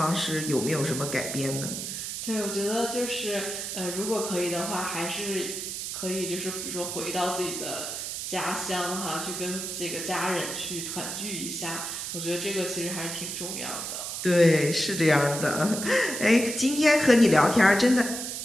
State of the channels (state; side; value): noise; right; hiss, 5 dB below the sound